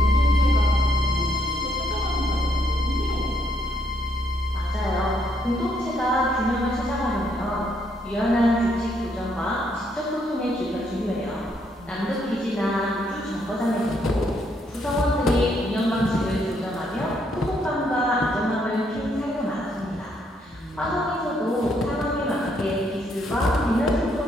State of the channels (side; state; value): both; normal; correlation 0.72